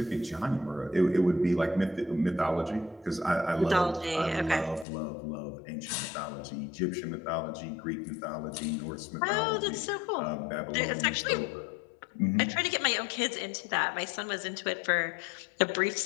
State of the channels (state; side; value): drops out; right; at 4.9 s